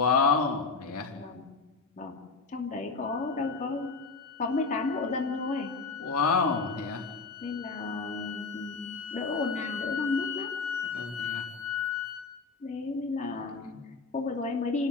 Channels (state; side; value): quieter; right; 4.3 dB